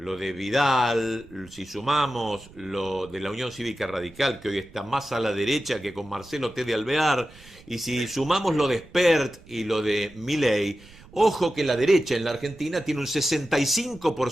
de Vidal, si sumamos lo de la Unión Cívica Radical, que hoy está más a la derecha que con Marcelo T. de Alvear, y si sumamos lo de Spert y lo de Milei, ojo que la derecha en la Argentina tiene un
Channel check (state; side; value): noise; right; rumble, 23 dB below the sound